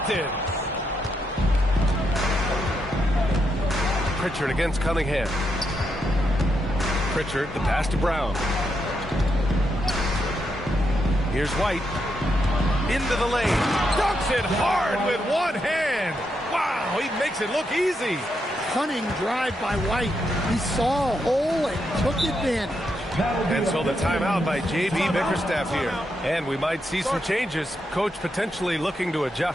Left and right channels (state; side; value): normal; both; correlation 0.81